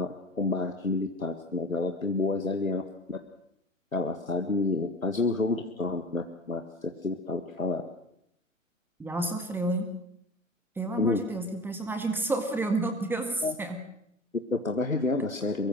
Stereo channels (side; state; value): both; normal; correlation 0.37